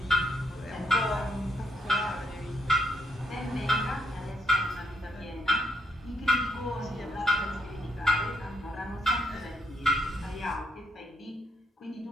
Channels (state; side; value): normal; both; correlation 0.75